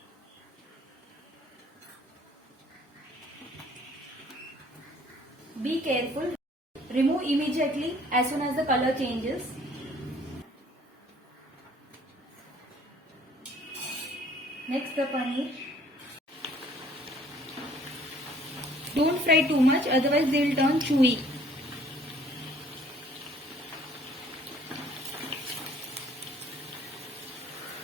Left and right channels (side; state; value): both; normal; correlation 0.57